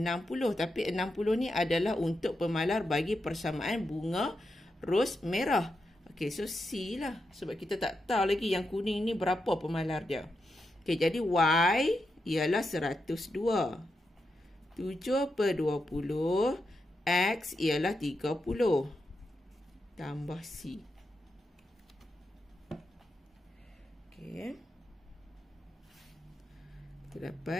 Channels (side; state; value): both; normal; correlation 0.86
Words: Tapi 60 ni adalah untuk pemalar bagi persamaan bunga ros merah. Okey, so C lah. Sebab kita tak tahu lagi yang kuning ni berapa pemalar dia. Okey, jadi Y ialah 102. 7/20 X ialah 30 tambah C. Okey. Kita